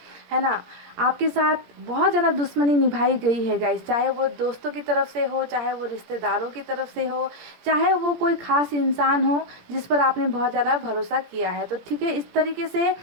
ना। आपके साथ बहुत ज़्यादा दुश्मनी निभाई गई है गाइस, चाहे वो दोस्तों की तरफ से हो, चाहे वो रिश्तेदारों की तरफ से हो, चाहे वो कोई ख़ास इंसान हो जिस पर आपने बहुत ज़्यादा भरोसा किया है। तो ठीक है, इस तरीके से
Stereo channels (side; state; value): left; late; 17 ms